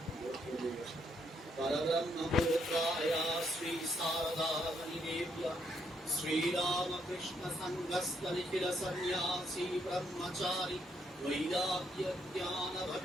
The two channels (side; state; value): both; normal; correlation 0.74